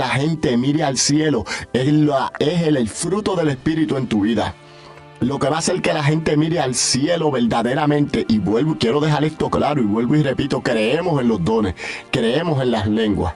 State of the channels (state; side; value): identical; both; correlation 1.00